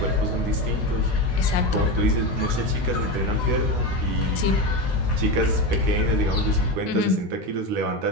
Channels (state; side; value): normal; both; correlation 0.19